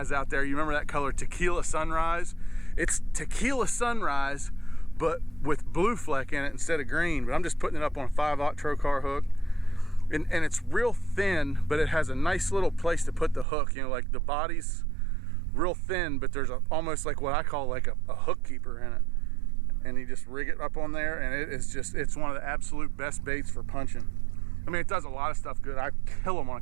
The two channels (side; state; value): left; drops out; at 13.5 s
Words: out there, you remember that color Tequila Sunrise? It's Tequila Sunrise, but with blue fleck in it instead of green. But I'm just putting it up on a 5/0 trocar hook. And it's real thin, but it has a nice little place to put the hook. You know, like the body's real thin, but there's almost like what I call like a hook keeper in it. And you just rig it up on there, and it's one of the absolute best baits for punching. I mean, it does a lot of stuff good. I kill them on a